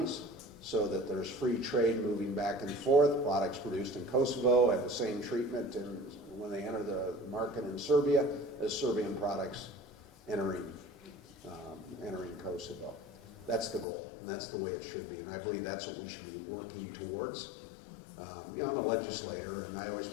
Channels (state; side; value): drops out; right; at 13.9 s